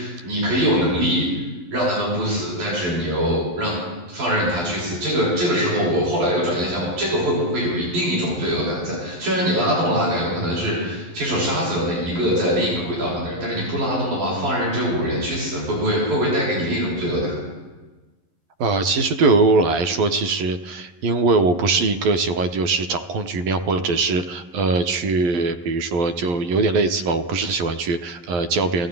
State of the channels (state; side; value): late; left; 11 ms